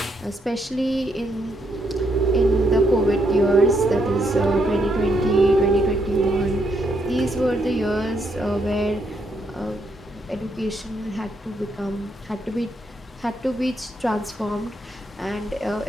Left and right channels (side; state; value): both; normal; correlation 0.76